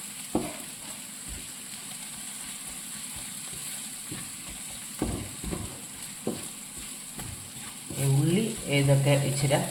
ഉള്ളി ഇതൊക്കെ ഇച്ചിരി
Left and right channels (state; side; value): identical; both; correlation 1.00